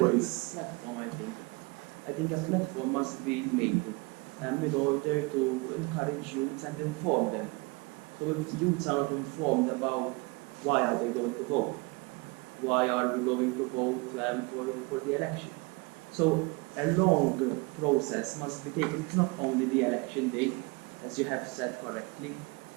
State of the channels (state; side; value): quieter; left; 27.3 dB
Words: platform, I think. I think a platform must be made in order to encourage youths and inform them. So if youths are not informed about why are they going to vote, why are we going to vote for the election? So a long process must be taken. It's not only the election day, as you have said correctly.